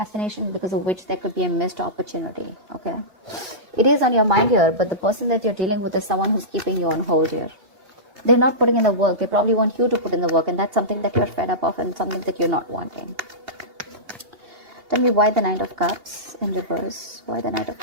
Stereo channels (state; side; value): late; left; 2.8 ms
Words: because of which there could be a missed opportunity. Okay, it is on your mind here, but the person that you're dealing with is someone who's keeping you on hold here. They're not putting in the work. They probably want you to put in the work, and that's something that you're fed up of and something that you're not wanting. Tell me why the Knight of Cups in reverse. Why the Knight of